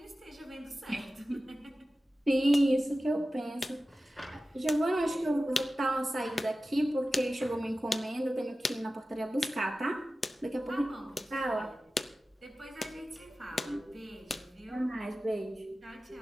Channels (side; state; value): both; normal; correlation 0.95